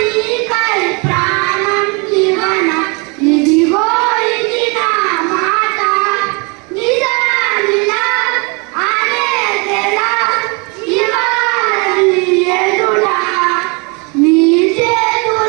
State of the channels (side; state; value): left; quieter; 31.6 dB